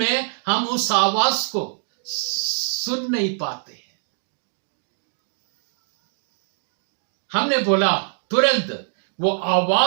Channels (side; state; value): left; silent; digital silence